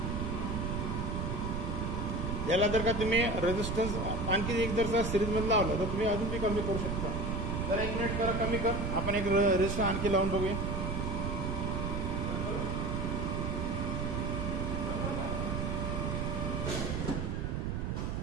याला जर का तुम्ही रेझिस्टन्स आणखी एक जर सिरीजमध्ये लावलं तर तुम्ही अजून बी कमी करू शकता. जरा 1 मिनिट करा, कमी कर. आपण एक रेझिस्टन्स आणखी लावून बघूया.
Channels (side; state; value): right; noise; rumble, 1 dB below the sound